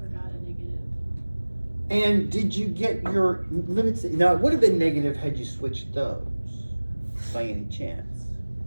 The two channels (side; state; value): both; inverted; correlation -1.00